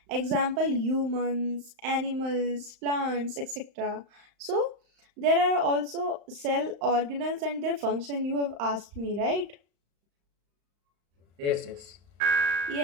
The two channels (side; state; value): left; late; 35 ms